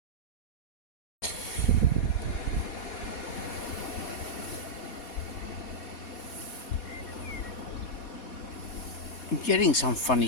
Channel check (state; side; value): late; right; 4.2 ms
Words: I'm getting some